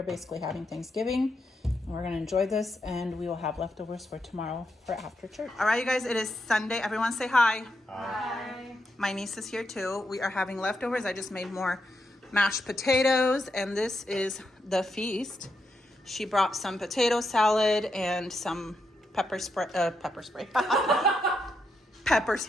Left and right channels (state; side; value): normal; both; correlation 0.82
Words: basically having Thanksgiving. We're gonna enjoy this, and we will have leftovers for tomorrow for after church. All right, you guys, it is Sunday. Everyone say hi. Hi. My niece is here too. We are having leftovers. I just made more mashed potatoes, and this is the feast. She brought some potato salad and some pepper spread. Pepper